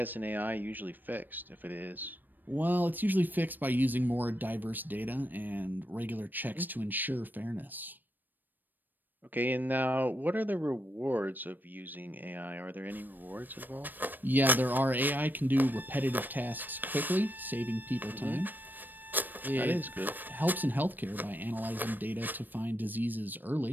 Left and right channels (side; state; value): left; late; 0.090 ms